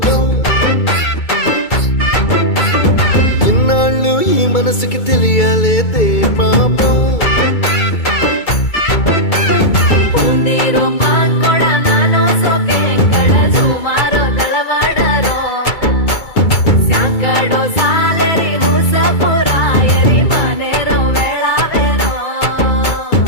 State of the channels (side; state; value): right; late; 2.3 ms